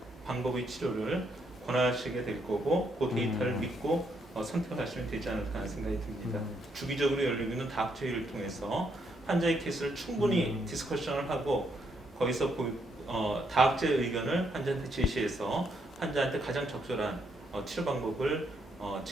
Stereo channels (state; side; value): normal; both; correlation 0.75